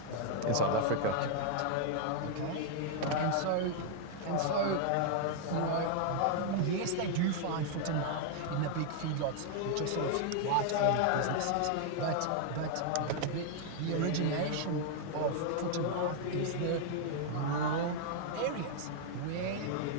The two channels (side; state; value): both; different; correlation 0.00